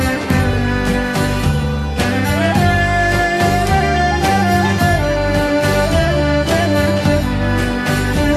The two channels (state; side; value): identical; both; correlation 1.00